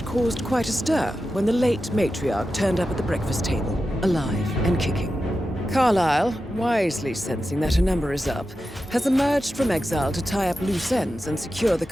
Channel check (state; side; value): normal; both; correlation 0.91